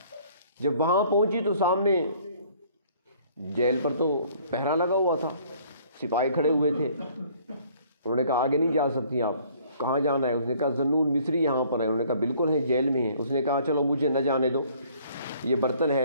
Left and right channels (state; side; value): inverted; both; correlation -0.58